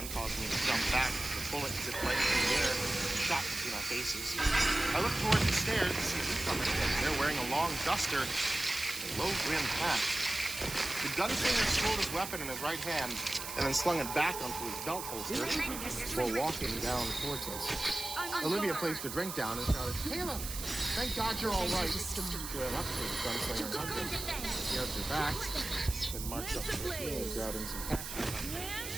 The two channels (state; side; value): noise; right; hiss, 7 dB below the sound